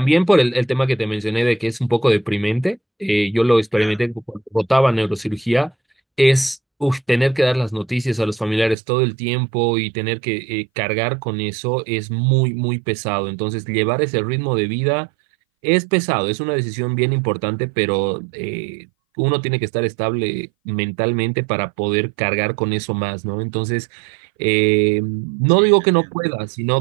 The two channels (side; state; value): left; drops out; at 8.8 s